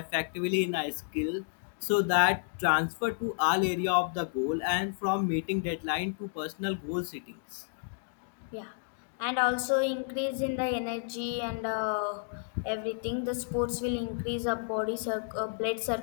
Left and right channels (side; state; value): right; silent; digital silence